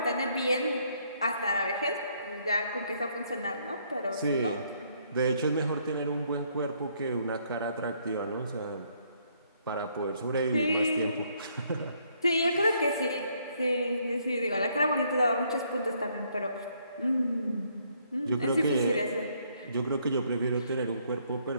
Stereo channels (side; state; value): both; inverted; correlation -0.69